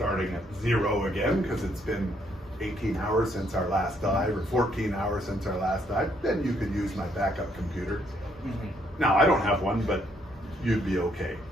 at 0 again, because it's been 18 hours since our last dive, or 14 hours since our last dive. Then you could use my backup computer. Mm-hmm. Now, I don't have one, but you'd be okay.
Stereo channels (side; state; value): both; normal; correlation 0.71